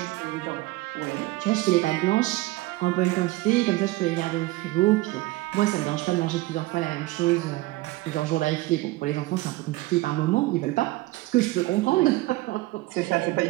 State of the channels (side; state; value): left; quieter; 19.2 dB